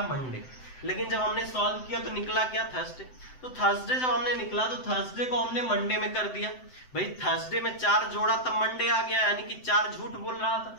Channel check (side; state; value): right; late; 7.8 ms